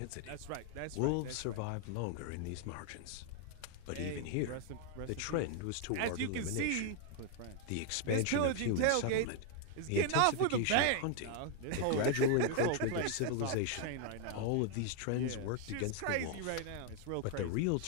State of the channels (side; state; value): both; different; correlation 0.00